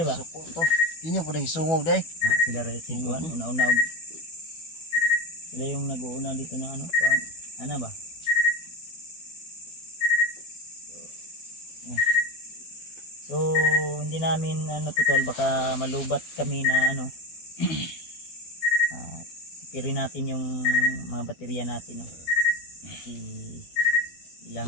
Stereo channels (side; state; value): right; late; 12 ms